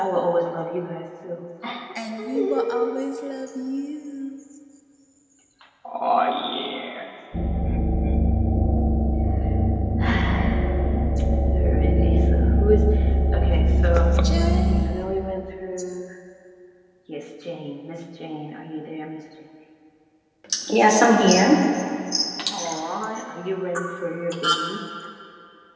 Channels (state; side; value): identical; both; correlation 1.00